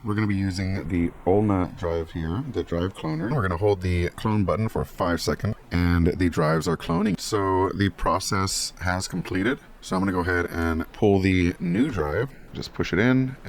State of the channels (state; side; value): identical; both; correlation 1.00